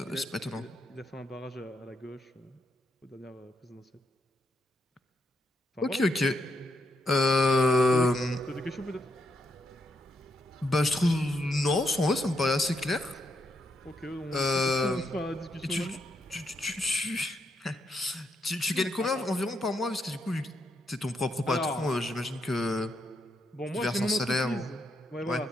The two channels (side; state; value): both; normal; correlation 0.80